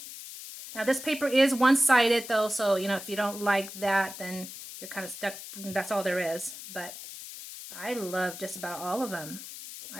Now this paper is one-sided though, so if you don't like that, then you're kind of stuck. That's all there is. But I love just about all of them.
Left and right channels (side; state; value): left; noise; hiss, 12 dB below the sound